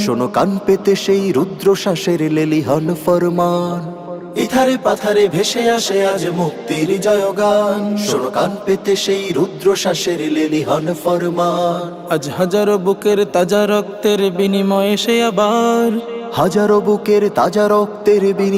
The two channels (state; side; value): identical; both; correlation 1.00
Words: শোনো কান পেতে সেই রুদ্রশ্বাসের লেলিহান ফরমান। ইথারে পাথারে ভেসে আসে আজ মুক্তির জয়গান, শোনো কান পেতে সেই রুদ্রশ্বাসের লেলিহান ফরমান। আজ হাজারো বুকের তাজা রক্তের বিনিময়ে সে আবার, হাজারো বুকের তাজা রক্তের